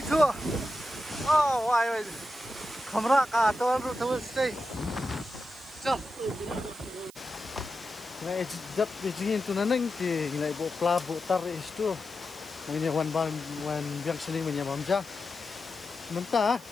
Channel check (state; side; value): noise; right; hiss, 22 dB below the sound